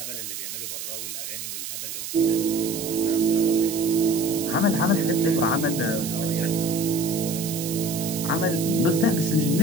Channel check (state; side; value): noise; right; hiss, 7 dB below the sound